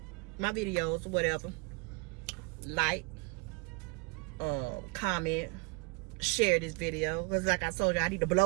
my videos or whatever. Like, comment, share this video, because like I told you, I need to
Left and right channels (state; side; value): quieter; left; 30.4 dB